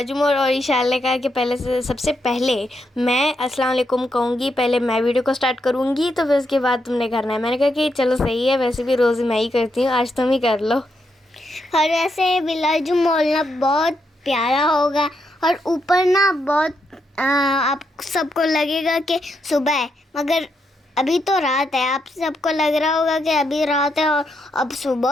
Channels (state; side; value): normal; both; correlation 0.81